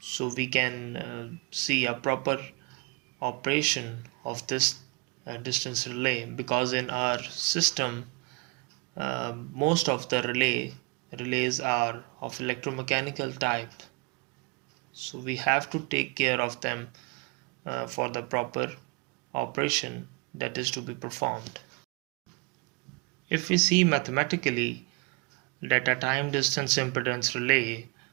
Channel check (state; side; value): quieter; left; 31.7 dB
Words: we can see a proper operation of this distance relay, because in our system most of the relays are of electromechanical type, so we have to take care of them for the proper operation that is to be performed. If we see mathematically that a time distance impedance relay